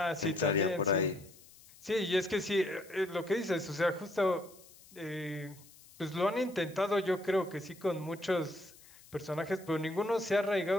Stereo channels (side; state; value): left; noise; hiss, 23 dB below the sound